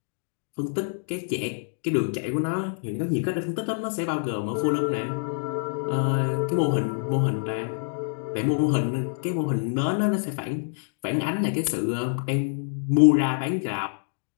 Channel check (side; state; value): right; silent; digital silence